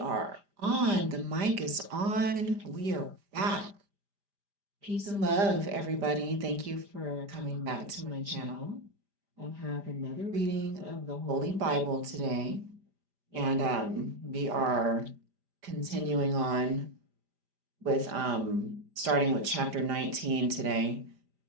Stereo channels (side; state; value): left; late; 5.0 ms